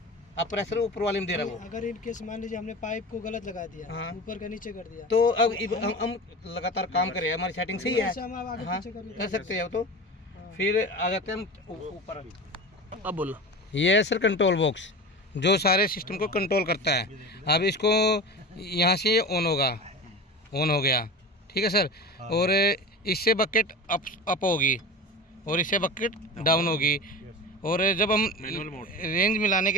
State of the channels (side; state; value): both; normal; correlation 0.30